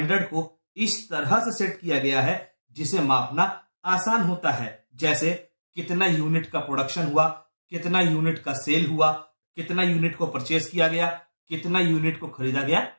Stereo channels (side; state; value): both; inverted; correlation -1.00